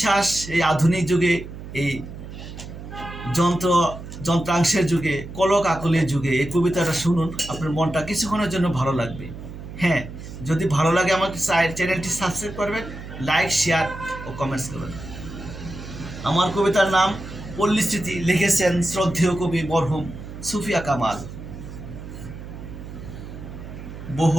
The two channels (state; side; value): noise; right; hum, 12 dB below the sound